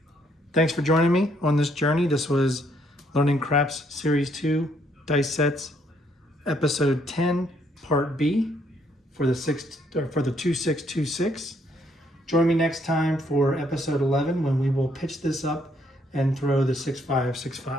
for joining me on this journey. This was Learning Craps Series 2 Dice Sets, Episode 10, Part B for the 2626. Join me next time for Episode 11 when we will pitch this up and throw the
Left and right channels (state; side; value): normal; both; correlation 0.70